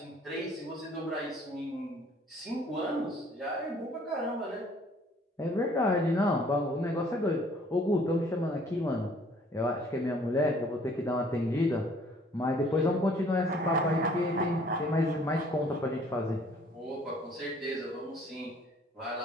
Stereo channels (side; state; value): both; normal; correlation 0.58